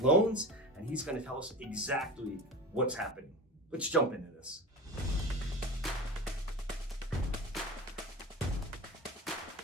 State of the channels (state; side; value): normal; both; correlation 0.29